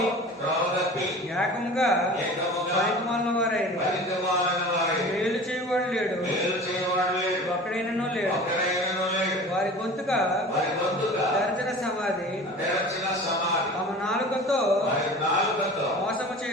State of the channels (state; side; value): normal; both; correlation 0.39